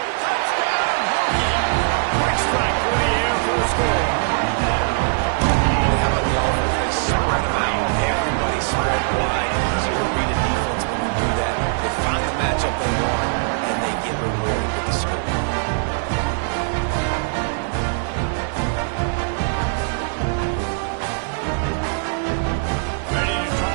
Touchdown, Hokie! Quick strike through the air for a score. How about the offense? They spread them out. Everybody spread wide. Easier to read a defense when you do that. They find the matchup they want, and they get rewarded with the score. Ready to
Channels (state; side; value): silent; left; 62 dB below the other